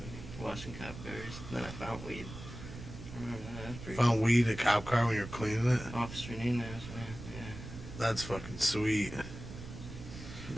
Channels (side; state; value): right; noise; rumble, 11 dB below the sound